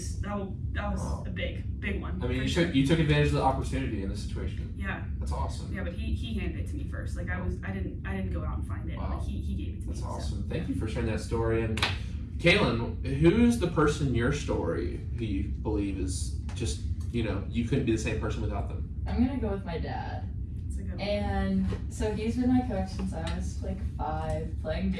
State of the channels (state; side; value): identical; both; correlation 1.00